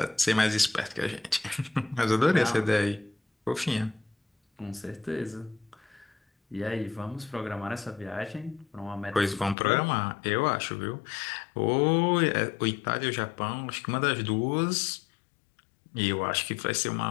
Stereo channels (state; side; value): drops out; right; at 9.6 s